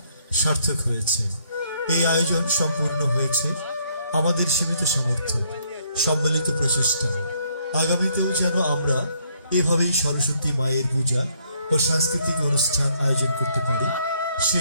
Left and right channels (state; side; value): inverted; both; correlation -0.68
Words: সার্থক হয়েছে। এই আয়োজন সম্পূর্ণ হয়েছে আমাদের সীমিত সামর্থ্য, সম্মিলিত প্রচেষ্টা। আগামীতেও যেন আমরা এভাবেই সরস্বতী মায়ের পূজা ও সাংস্কৃতিক অনুষ্ঠান আয়োজন করতে পারি,